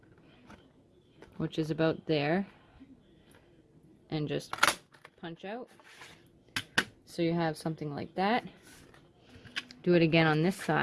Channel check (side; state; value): both; identical; correlation 1.00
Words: which is about there. And just punch out. So you have something like that. Do it again on this